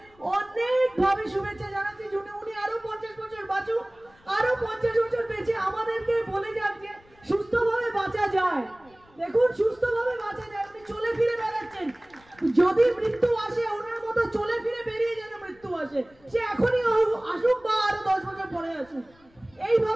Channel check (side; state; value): left; noise; rumble, 29 dB below the sound